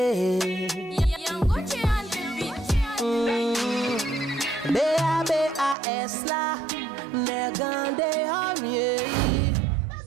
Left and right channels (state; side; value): drops out; left; at 5.8 s